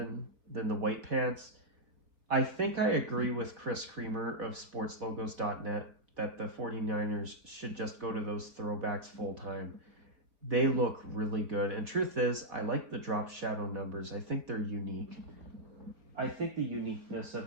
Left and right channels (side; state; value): left; late; 4.2 ms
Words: than the white pants, I think I agree with Chris Creamer of sportslogos.net that the 49ers should just go to those throwbacks full time. They look really good. And truth is, I like the drop shadow numbers. I think they're unique. I think the uniqueness